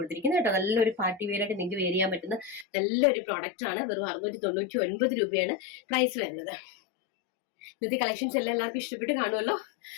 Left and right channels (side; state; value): right; drops out; at 2.7 s